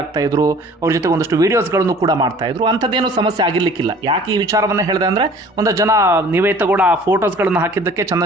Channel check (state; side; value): normal; both; correlation 0.49